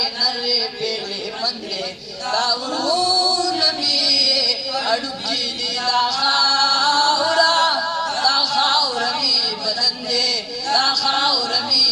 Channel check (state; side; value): identical; both; correlation 1.00